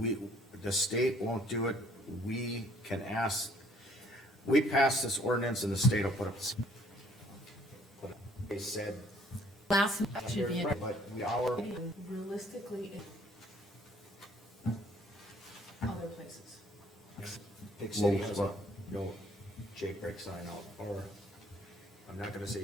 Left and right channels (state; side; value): normal; both; correlation 0.61